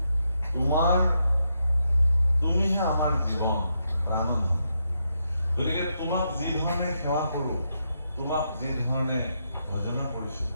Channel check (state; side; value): inverted; both; correlation -0.81